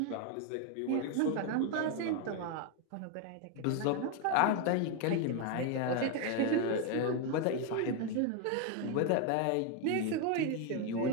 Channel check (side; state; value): both; different; correlation 0.01